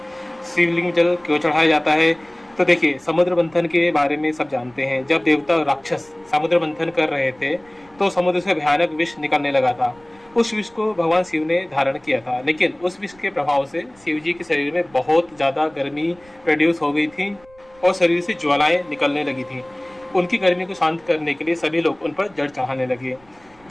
शिवलिंग में जल क्यों चढ़ाया जाता है। तो देखिए, समुद्र मंथन के बारे में सब जानते हैं। जब देवता और राक्षस समुद्र मंथन कर रहे थे तो समुद्र से भयानक विष निकलने लगा था। उस विष को भगवान शिव ने धारण किया था, लेकिन उस विष के प्रभाव से शिव जी के शरीर में बहुत ज़्यादा गर्मी प्रोड्यूस हो गई थी और शरीर से ज्वालाएं निकलने लगी थी। उनकी गर्मी को शांत करने के लिए सभी लोग उन पर जल चढ़ाने लगे।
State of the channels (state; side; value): noise; right; rumble, 29 dB below the sound